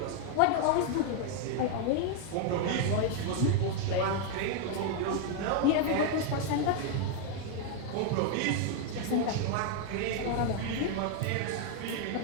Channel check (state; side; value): different; both; correlation 0.00